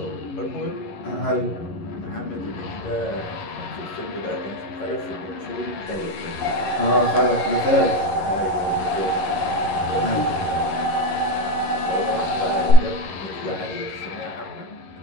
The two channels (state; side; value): late; right; 11 ms